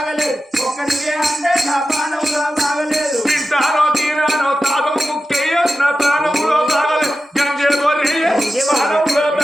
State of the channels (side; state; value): both; normal; correlation 0.92